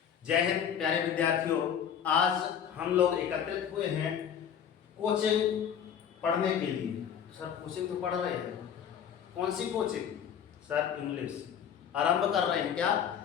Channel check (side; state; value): right; quieter; 8.5 dB